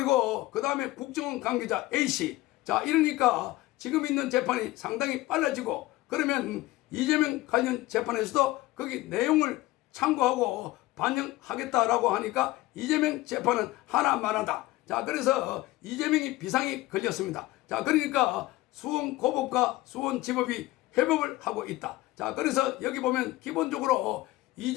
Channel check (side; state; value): right; quieter; 18.2 dB